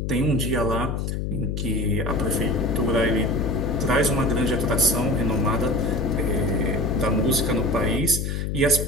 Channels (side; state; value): left; noise; hum, 2 dB below the sound